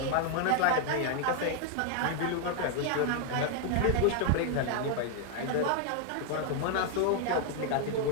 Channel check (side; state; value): both; different; correlation 0.00